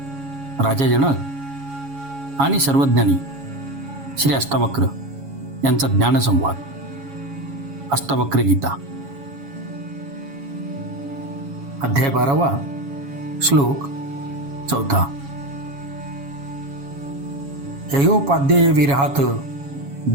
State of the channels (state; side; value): late; left; 7.2 ms